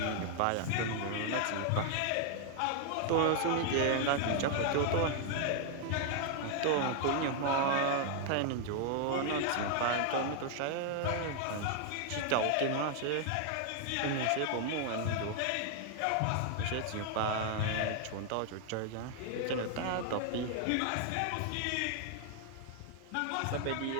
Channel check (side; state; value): both; different; correlation 0.00